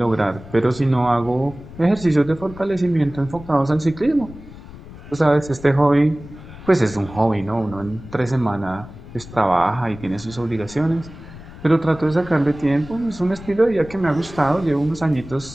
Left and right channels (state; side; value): noise; left; rumble, 16 dB below the sound